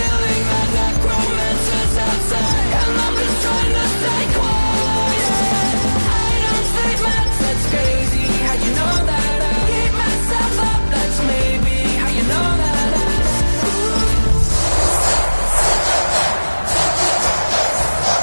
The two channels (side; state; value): both; inverted; correlation -1.00